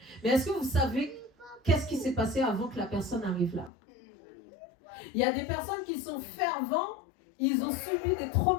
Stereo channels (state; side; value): drops out; right; at 3.7 s